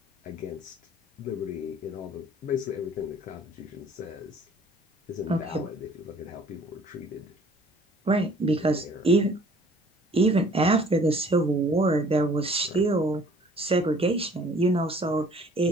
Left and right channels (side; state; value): both; normal; correlation 0.54